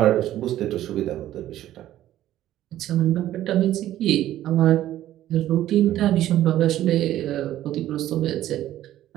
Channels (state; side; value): quieter; left; 13.2 dB